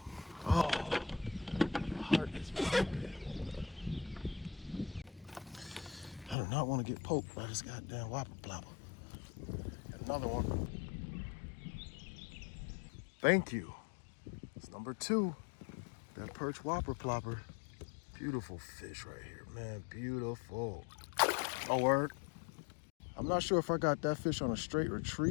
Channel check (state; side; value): drops out; right; at 6.4 s